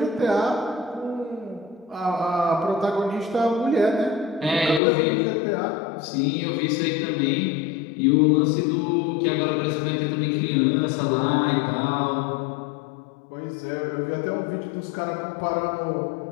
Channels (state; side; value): drops out; right; at 4.8 s